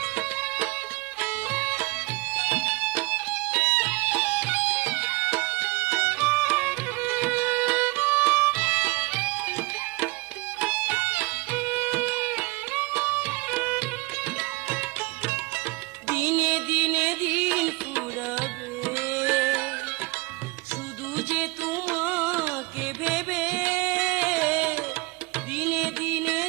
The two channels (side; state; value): left; quieter; 24.7 dB